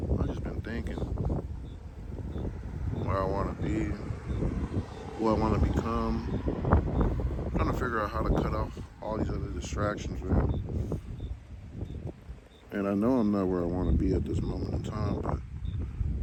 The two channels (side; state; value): both; identical; correlation 1.00